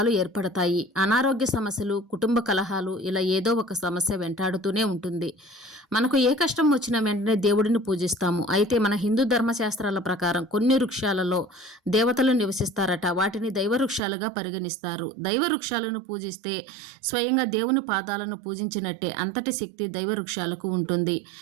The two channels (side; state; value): left; drops out; at 14.0 s